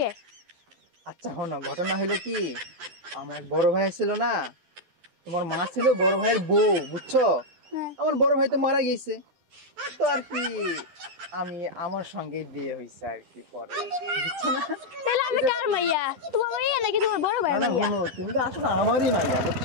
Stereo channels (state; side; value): late; left; 11 ms